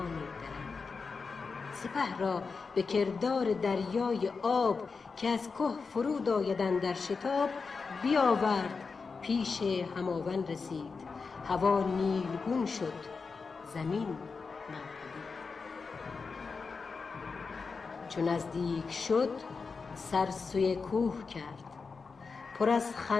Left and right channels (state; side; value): quieter; right; 4.8 dB